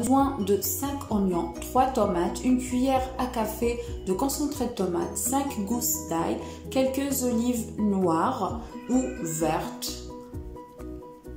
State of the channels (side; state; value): both; identical; correlation 1.00